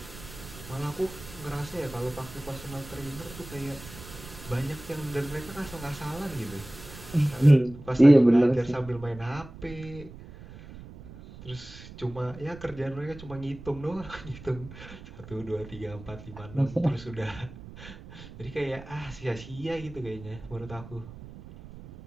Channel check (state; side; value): noise; right; rumble, 16 dB below the sound